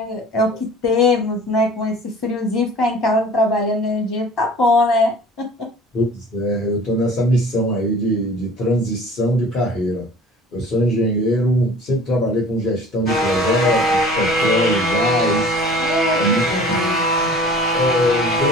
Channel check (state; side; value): normal; both; correlation 0.45